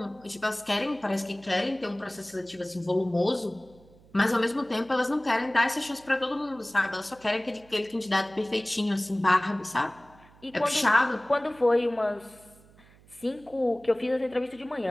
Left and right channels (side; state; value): right; noise; hum, 26 dB below the sound